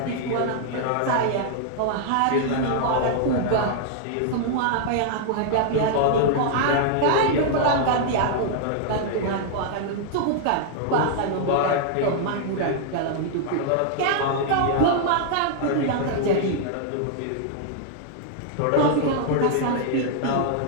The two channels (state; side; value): different; both; correlation -0.01